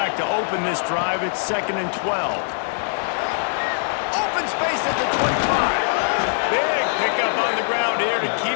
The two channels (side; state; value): right; silent; 64 dB below the other